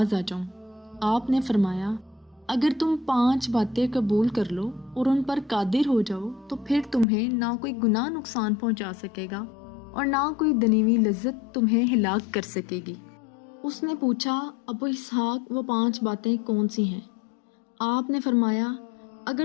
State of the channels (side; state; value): right; drops out; at 7.1 s